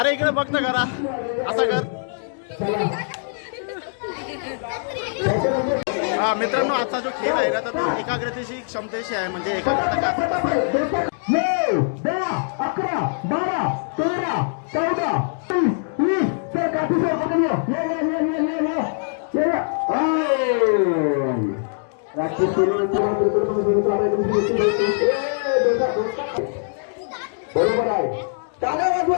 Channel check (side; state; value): right; silent; digital silence